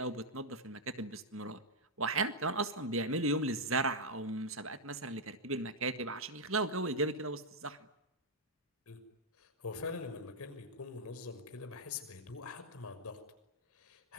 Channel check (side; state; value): both; normal; correlation -0.04